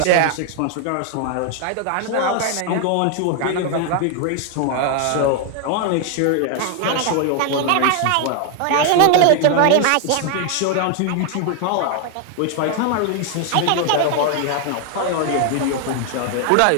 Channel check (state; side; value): different; both; correlation 0.00